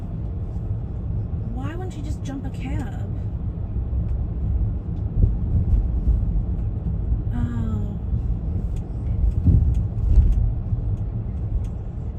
Why wouldn't she just jump a cab? Oh.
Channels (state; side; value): identical; both; correlation 1.00